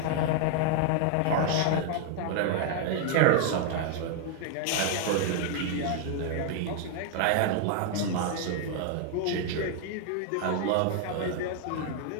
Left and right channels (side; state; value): both; different; correlation 0.00